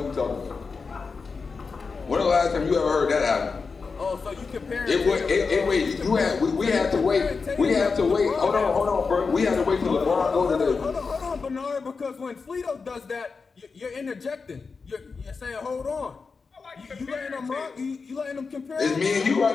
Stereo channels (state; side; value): quieter; right; 4.8 dB